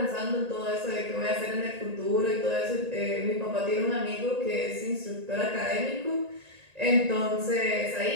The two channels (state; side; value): late; left; 1.8 ms